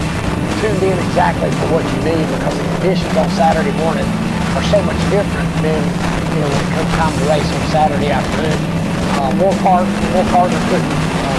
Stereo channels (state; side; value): identical; both; correlation 1.00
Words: tuned in exactly for what you need, because the conditions on Saturday morning are so much different than when it comes time to race on Saturday afternoon. More cars are putting